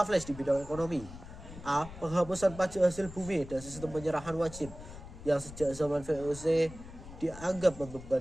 di bidang ekonomi. A. Penghapusan pajak hasil bumi dan sistem penyerahan wajib yang sejak zaman VOC dianggap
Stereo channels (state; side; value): noise; left; rumble, 14 dB below the sound